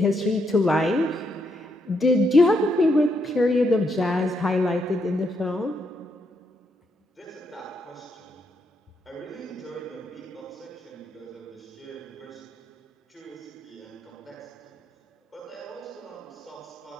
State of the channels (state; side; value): normal; both; correlation 0.78